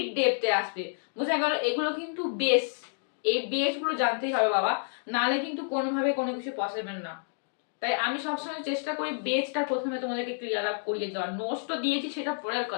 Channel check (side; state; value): right; silent; digital silence